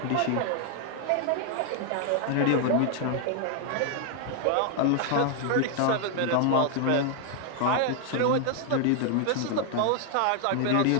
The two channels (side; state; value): both; different; correlation 0.00